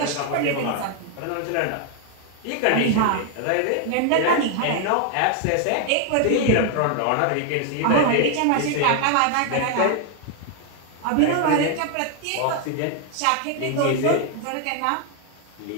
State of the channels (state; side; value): different; both; correlation 0.00